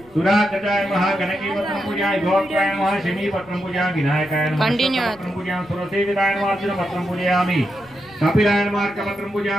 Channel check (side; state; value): left; noise; rumble, 26 dB below the sound